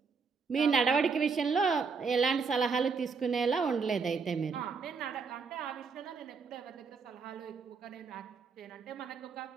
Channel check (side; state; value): left; quieter; 5.1 dB